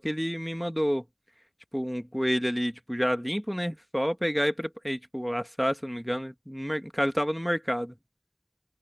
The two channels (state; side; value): identical; both; correlation 1.00